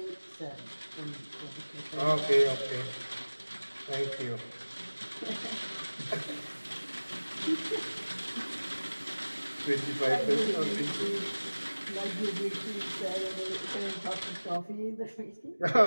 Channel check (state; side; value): inverted; both; correlation -1.00